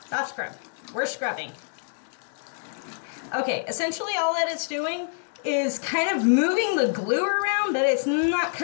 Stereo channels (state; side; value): silent; right; digital silence